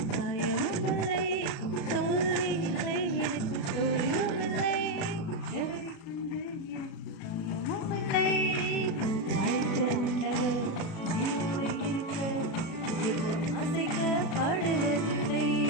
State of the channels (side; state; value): right; late; 36 ms